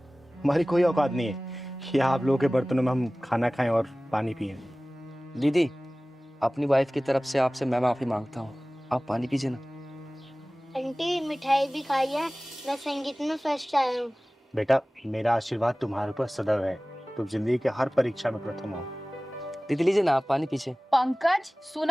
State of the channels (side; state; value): both; normal; correlation 0.98